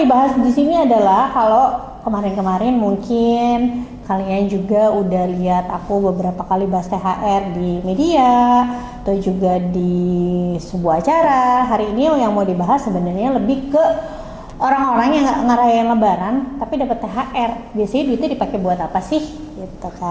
di sini adalah kalau kemarin-kemarin mungkin kalian juga udah lihat aku beberapa kali bahas THR di media atau juga di sebuah acara. Hari ini yang mau dibahas sebenarnya lebih ke orang-orang yang nggak ngerayain Lebaran tapi dapat THR. Biasanya duitnya dipakai buat apa sih? Gitu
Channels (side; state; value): both; identical; correlation 1.00